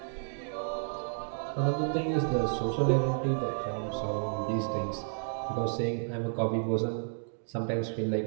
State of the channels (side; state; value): left; silent; digital silence